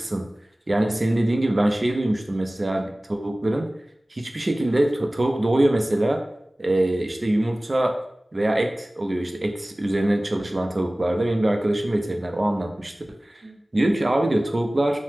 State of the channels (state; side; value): normal; both; correlation 0.98